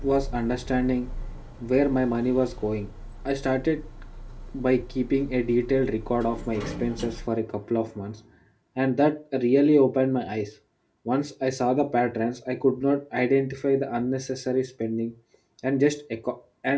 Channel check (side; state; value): both; identical; correlation 1.00